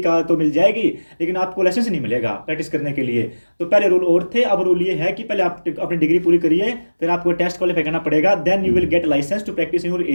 तो मिल जाएगी, लेकिन आपको लाइसेंस नहीं मिलेगा प्रैक्टिस करने के लिए। तो पहले रूल और थे, अब रूल ये है कि पहले आप अपनी डिग्री पूरी करिए, फिर आपको टेस्ट क्वालिफाई करना पड़ेगा, then you will get licence to practise in your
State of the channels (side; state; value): both; inverted; correlation -1.00